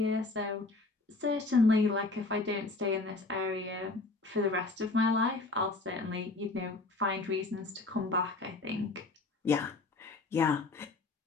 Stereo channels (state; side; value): quieter; right; 3.4 dB